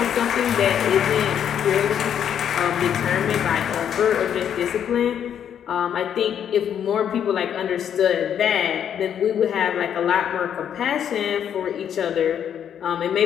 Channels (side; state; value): right; quieter; 9.0 dB